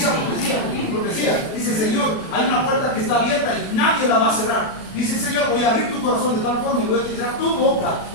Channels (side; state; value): right; late; 37 ms